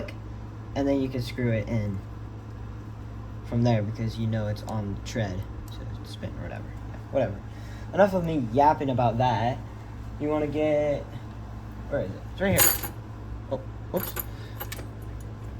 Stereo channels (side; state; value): both; identical; correlation 1.00